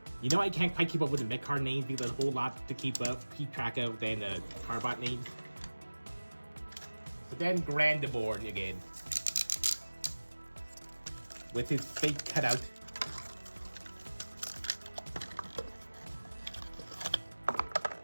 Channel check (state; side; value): inverted; both; correlation -1.00